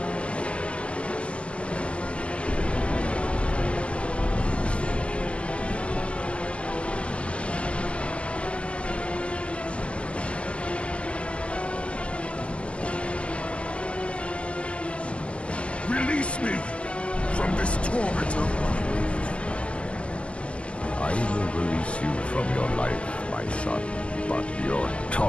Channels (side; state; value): right; late; 0.056 ms